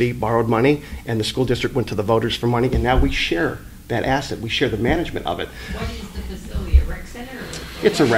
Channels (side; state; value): both; identical; correlation 1.00